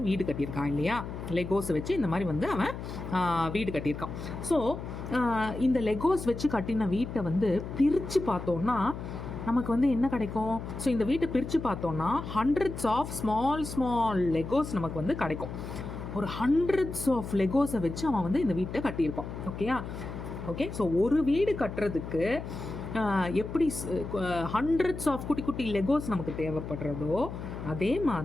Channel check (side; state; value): left; noise; hum, 8 dB below the sound